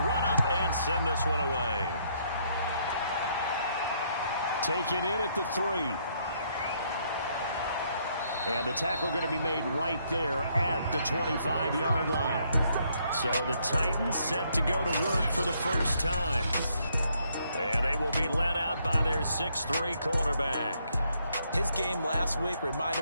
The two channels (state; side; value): inverted; both; correlation -0.71